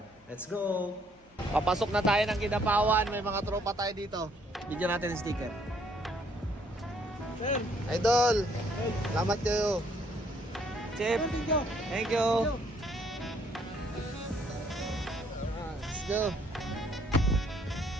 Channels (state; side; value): normal; both; correlation 0.66